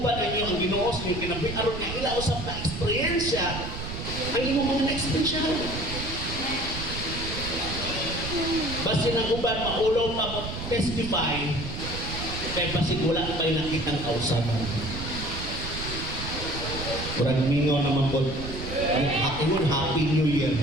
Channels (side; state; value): right; noise; rumble, 7 dB below the sound